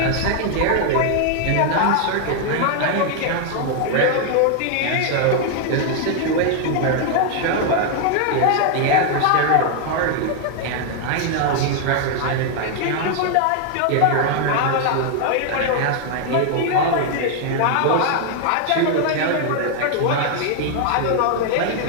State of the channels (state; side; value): different; both; correlation 0.00